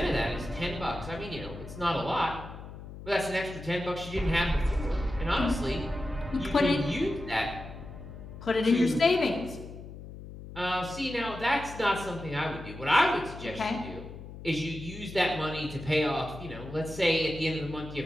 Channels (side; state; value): left; noise; hum, 13 dB below the sound